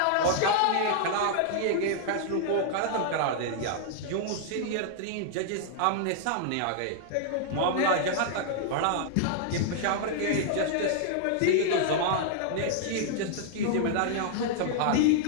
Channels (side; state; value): both; different; correlation -0.01